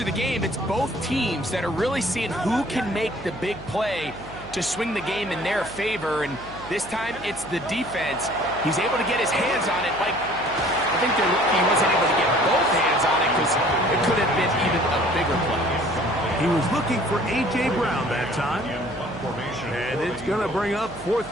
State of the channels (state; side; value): noise; right; hum, 16 dB below the sound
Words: the game, it's both teams that are really seeing who can make the big play to swing the game in their favor, and this time it's the defense. He's able to get his hands on it. Like, I think they're lucky he wasn't able to get hands on it because it could have been even a bigger play. He was looking for A.J. Brown that time. And it's going to bring up 4th